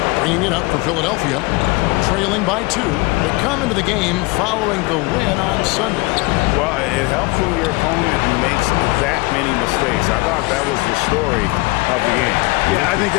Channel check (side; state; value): right; quieter; 24.0 dB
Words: bringing it up for Philadelphia, trailing by 2. They come into the game following the win on Sunday. Well, it helps when your opponent makes that many mistakes. I thought that was the story of the game. Yeah, I think